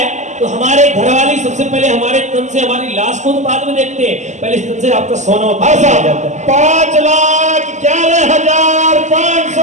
तो हमारे घर वाले सबसे पहले हमारे तन से हमारी लाश को तो बाद में देखते हैं, पहले इस तन से आपका सोना उतार दिया जाता है।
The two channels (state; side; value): late; left; 0.34 ms